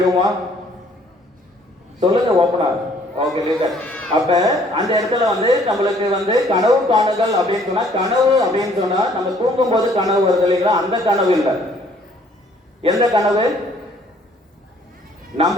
சொல்லுங்க ஓப்பனா. Okay listen. அப்ப அந்த இடத்துல வந்து நம்மளுக்கு வந்து கனவு காணுதல் அப்படின்னு சொன்னா, கனவு அப்படின்னு சொன்னா நம்ம தூங்கும் போது கனவு வருது இல்லைங்களா? அந்த கனவு இல்லை. எந்த கனவு?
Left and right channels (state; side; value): normal; both; correlation 0.60